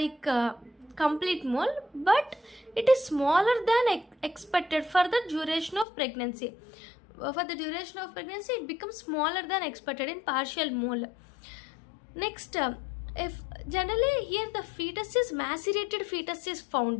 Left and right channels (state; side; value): drops out; right; at 5.9 s